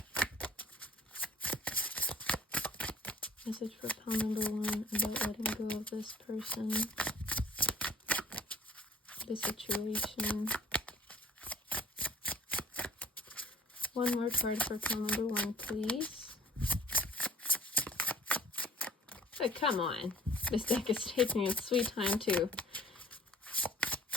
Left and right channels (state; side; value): normal; both; correlation 0.51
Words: Message for pile number 1 about letting go of this person, the situation. One more card for pile number 1, please. Oh, come on. This deck is taking its sweet time, too.